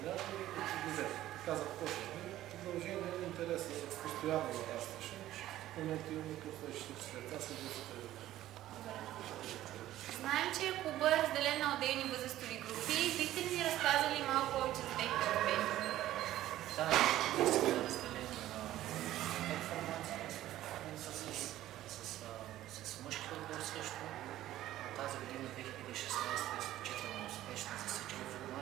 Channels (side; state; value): left; quieter; 14.1 dB